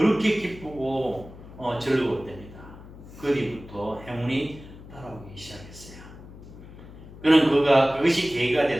기쁘고 즐거웠답니다. 그 뒤부터 행운이 따라오기 시작했어요. 그것이 계기가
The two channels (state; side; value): noise; left; hum, 17 dB below the sound